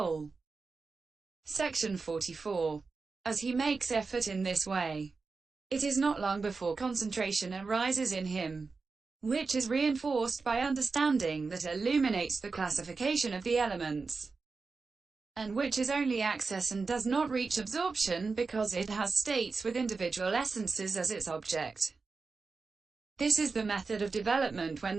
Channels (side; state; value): left; quieter; 4.4 dB